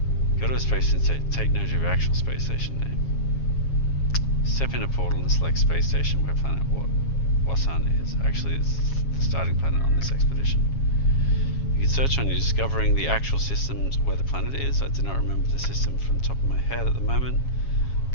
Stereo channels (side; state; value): right; late; 7.3 ms